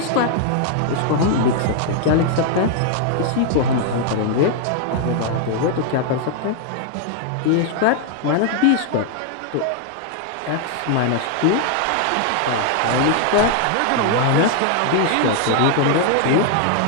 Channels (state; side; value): different; both; correlation 0.00